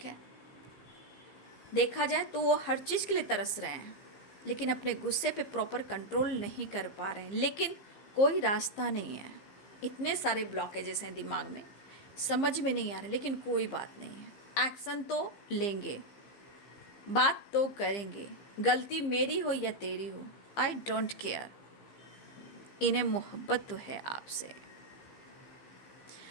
देखा जाए तो वो हर चीज़ के लिए तरस रहे हैं, लेकिन अपने गुस्से पे प्रॉपर कंट्रोल नहीं कर पा रहे हैं, लेकिन कोई रास्ता नहीं है, इतने सारे ब्लॉकेजेस हैं दिमाग में, समझ में नहीं आ रहे, लेकिन कोई बात नहीं है, एक्शन तो लेंगे, बात तो करेंगे, गलती मेरी हो या तेरी हो, आई डोंट केयर, इन्हें मोहब्बत तो है आपसे।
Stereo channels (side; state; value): right; late; 15 ms